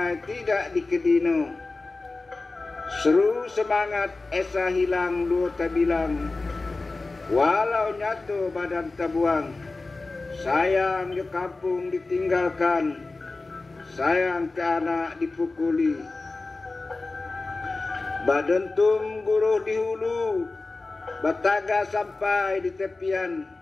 tidak dikedino. Seru semangat esa hilang dua tabilang, walau nyatu badan tabuang. Sayang di kampung ditinggalkan, sayang ke anak dipukuli. Badentum guruh di hulu, bataga sampai di tepian.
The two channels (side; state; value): right; quieter; 3.4 dB